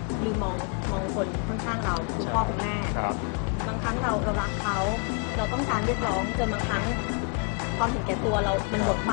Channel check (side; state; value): right; quieter; 36.2 dB